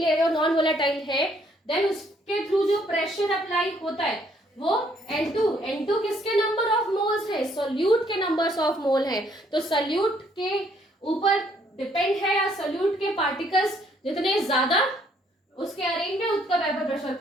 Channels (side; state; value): both; normal; correlation 0.66